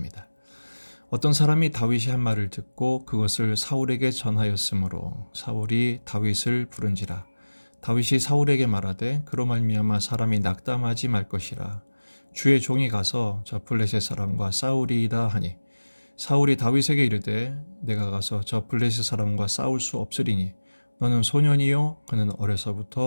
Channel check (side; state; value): both; inverted; correlation -1.00